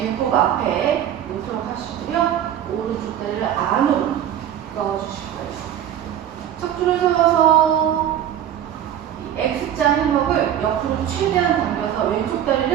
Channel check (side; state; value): left; quieter; 10.5 dB